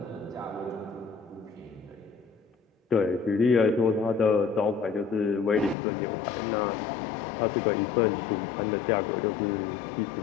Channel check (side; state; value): right; drops out; at 5.8 s